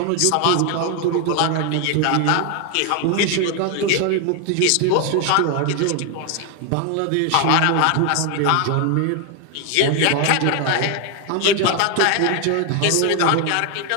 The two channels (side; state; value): both; different; correlation 0.01